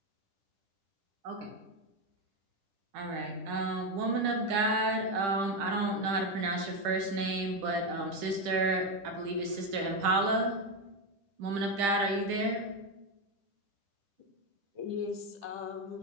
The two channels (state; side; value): late; left; 10 ms